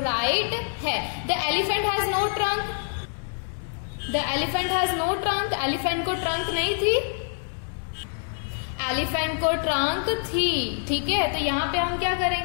है. The elephant has no trunk. The elephant has no trunk. Elephant को ट्रंक नहीं थी, एलिफेंट को ट्रंक थी, ठीक है. तो यहाँ पे हम क्या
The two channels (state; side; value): silent; right; 61 dB below the other